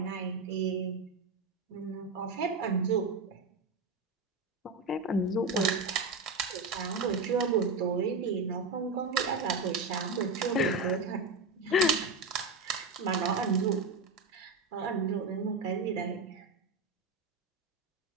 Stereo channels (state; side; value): quieter; left; 3.5 dB